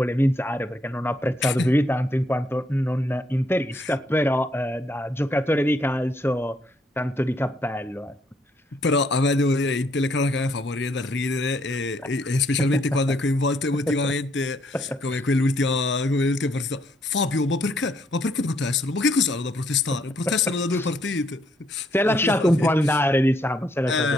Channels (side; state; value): both; normal; correlation 0.71